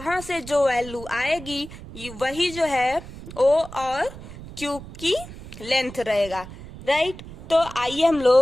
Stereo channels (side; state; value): right; noise; rumble, 14 dB below the sound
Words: से जो वैल्यू आएगी वही जो है O और Q की लेंथ रहेगा, राइट। तो आइए हम